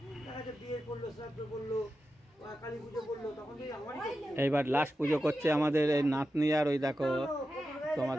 দেখা যাচ্ছে বিয়ে করলো, শ্রাদ্ধ করলো, কালী পুজো করলো, তখন থেকে আমারই করলো। এইবার লাস্ট পুজো করছে আমাদের এই নাতনি, আর ওই দেখো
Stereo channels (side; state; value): both; normal; correlation 0.91